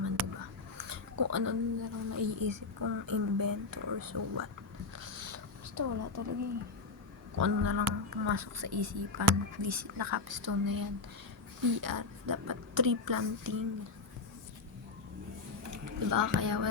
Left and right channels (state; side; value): quieter; right; 3.9 dB